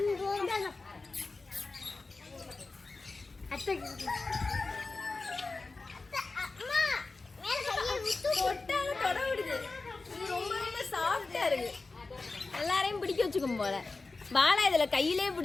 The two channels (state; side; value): quieter; right; 3.7 dB